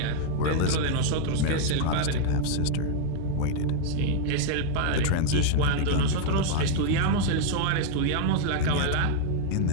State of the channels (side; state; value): both; different; correlation 0.00